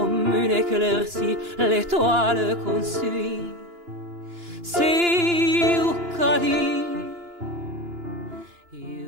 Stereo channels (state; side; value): late; left; 2.9 ms